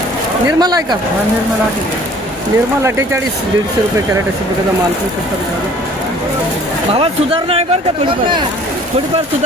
निर्मल आहे का? निर्मल 48. 150 रुपये कॅरेट अशा प्रकारचा माल करू शकतात. भावात सुधारणा आहे बरं का? थोडीफार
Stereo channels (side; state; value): both; normal; correlation 0.53